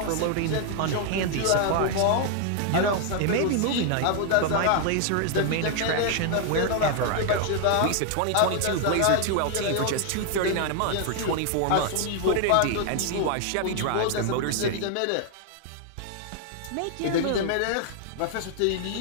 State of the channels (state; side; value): different; both; correlation 0.00